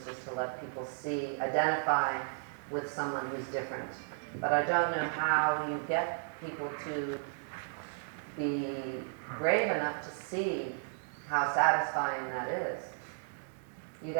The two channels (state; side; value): silent; left; digital silence